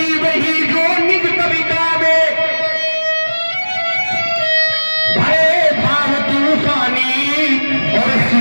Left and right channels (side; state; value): both; inverted; correlation -1.00